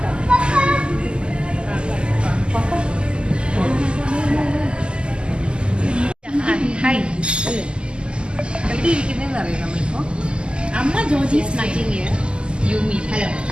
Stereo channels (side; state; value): left; late; 0.050 ms